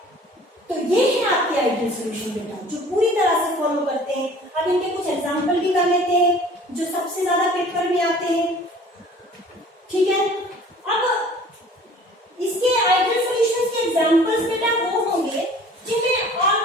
तो ये है आपके आइडियल सॉल्यूशन बेटा, जो पूरी तरह से फॉलो करते हैं। अब इनके कुछ एग्जांपल भी कर लेते हैं जो सबसे ज्यादा पेपर में आते हैं, ठीक है। अब इसके आइडियल सॉल्यूशंस के एग्जांपल्स बेटा वो होंगे जिनमें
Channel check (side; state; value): both; normal; correlation 0.48